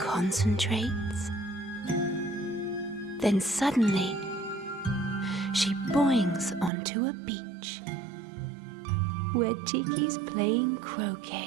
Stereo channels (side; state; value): left; drops out; at 6.7 s